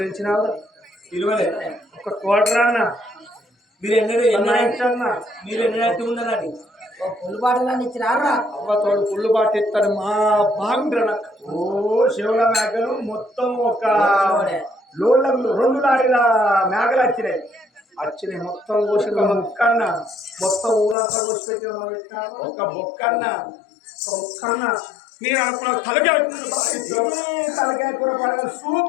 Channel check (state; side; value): drops out; right; at 21.0 s